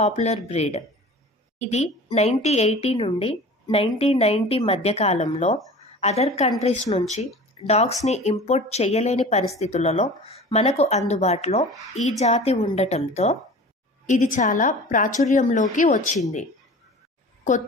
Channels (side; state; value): both; normal; correlation 0.40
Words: breed. ఇది 1980 నుండి 1990 మధ్య కాలంలో అదర్ కంట్రీస్ నుంచి డాగ్స్ని ఇంపోర్ట్ చేయలేని పరిస్థితులలో మనకు అందుబాటులో ఈ జాతి ఉండటంతో ఇది చాలా ప్రాచుర్యంలోకి వచ్చింది.